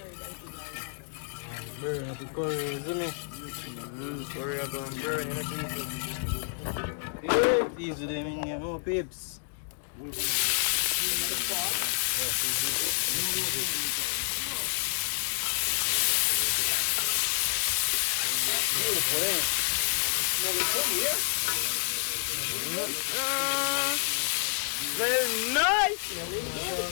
Burn at the curry, isn't it? Curry are going to burn, you know, people. These are them in here, oh, peeps. Well, nice!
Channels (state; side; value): silent; right; 58 dB below the other